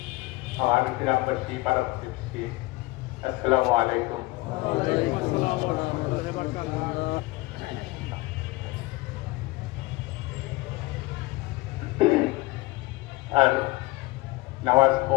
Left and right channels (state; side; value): quieter; right; 20.8 dB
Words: আমার গ্রামবাসী পাড়া প্রতিবেশী, আসসালামু আলাইকুম। আর নামাজ